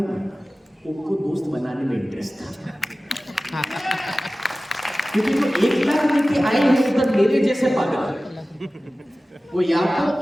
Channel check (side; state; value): both; normal; correlation 0.96